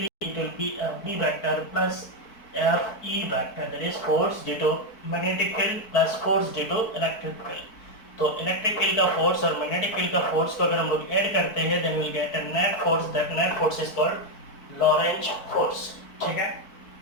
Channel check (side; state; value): right; late; 4.5 ms